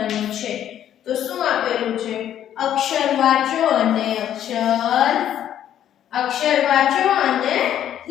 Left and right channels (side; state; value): right; quieter; 10.7 dB